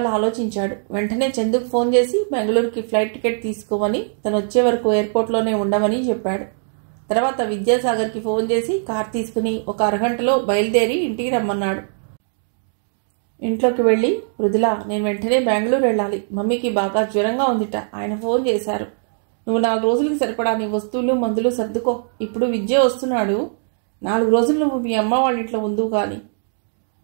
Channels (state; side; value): silent; left; digital silence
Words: ఆలోచించాడు. వెంటనే చందుకు ఫోన్ చేసి బెంగళూరుకి ఫ్లైట్ టికెట్ తీసుకోమని, తను వచ్చే వరకు ఎయిర్పోర్ట్లోనే ఉండమని చెప్పాడు. తర్వాత విద్యాసాగర్కి ఫోన్ చేసి కార్ తీసుకుని ఒక అరగంటలో బయలుదేరి ఇంటికి రమ్మన్నాడు. ఇంట్లోకి వెళ్ళి, మృదుల, నేను వెంటనే బెంగళూరు వెళ్ళాలి. మమ్మీకి బాగా జ్వరంగా ఉందిట. ఆయన ఫోన్ చేశారు. నువ్వు 4 రోజులకి సరిపడా నీ వస్తువులు మందులు సర్దుకో. ఇప్పుడు విద్య వస్తున్నాడు. 4 రోజులు నువ్వు మీ అమ్మ వాళ్ళ ఇంట్లో ఉందువు కానీ.